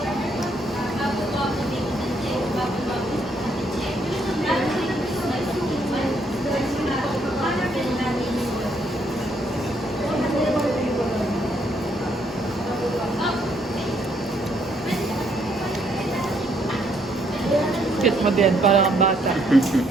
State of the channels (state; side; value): normal; both; correlation 0.71